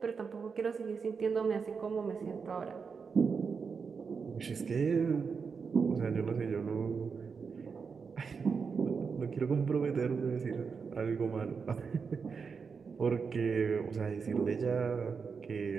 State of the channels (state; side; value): quieter; left; 5.6 dB